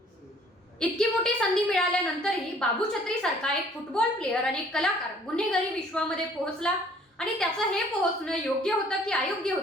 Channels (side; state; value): both; normal; correlation 0.57